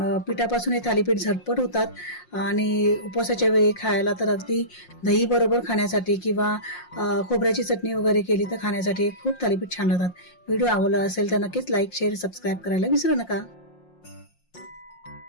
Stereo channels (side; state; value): right; late; 5.6 ms